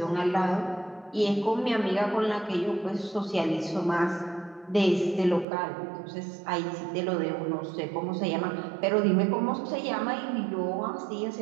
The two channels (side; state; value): left; drops out; at 5.5 s